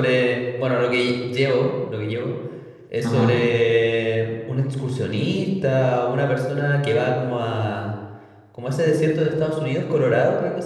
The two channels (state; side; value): identical; both; correlation 1.00